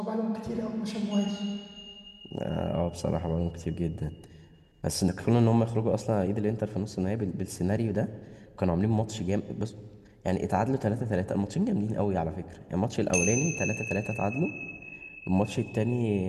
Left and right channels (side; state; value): both; identical; correlation 1.00